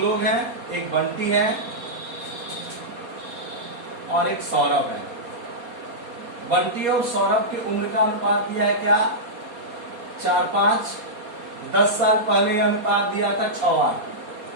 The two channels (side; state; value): left; late; 4.2 ms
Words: हैं, एक बंटी है और एक सौरभ है। बंटी और सौरभ की उम्र का अनुपात दिया है क्या 4-5। 10 साल पहले यह अनुपात दिया था 6-8।